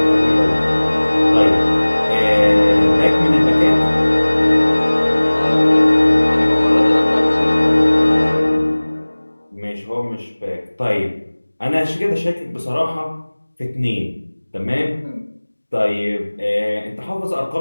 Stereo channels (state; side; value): inverted; both; correlation -1.00